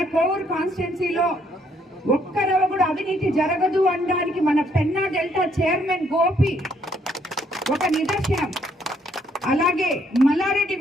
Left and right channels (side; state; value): both; normal; correlation 0.69